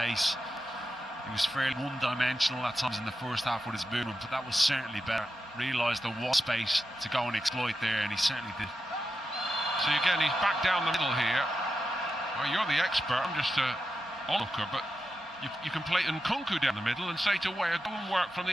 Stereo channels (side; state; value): both; normal; correlation 0.89